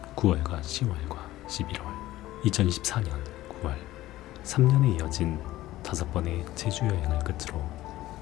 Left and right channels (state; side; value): quieter; right; 15.9 dB